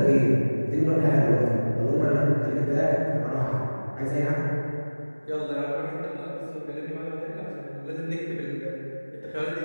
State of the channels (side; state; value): both; inverted; correlation -1.00